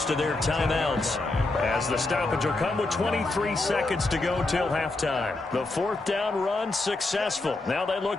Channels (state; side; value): quieter; right; 3.1 dB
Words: of their timeouts as the stoppage will come with 23 seconds to go till halftime. The 4th down run successful. Now they